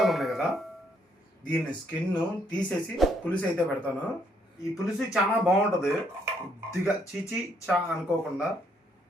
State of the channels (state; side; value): normal; both; correlation 0.70